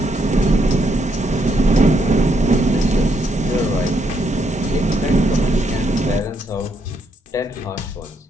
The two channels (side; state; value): both; normal; correlation 0.75